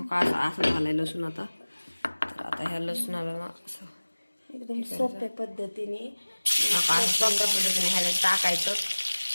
का असं झालंय लसूण आता. तर आता ह्या लसूणाला ना असं एकदम सोप्या पद्धतीने सोप्या पद्धतीने ह्याला टाकायचं.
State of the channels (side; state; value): both; inverted; correlation -1.00